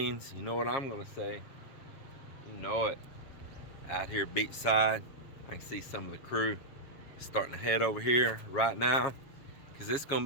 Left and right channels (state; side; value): late; right; 7.3 ms